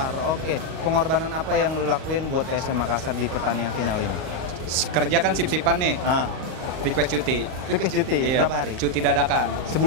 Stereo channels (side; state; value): left; late; 39 ms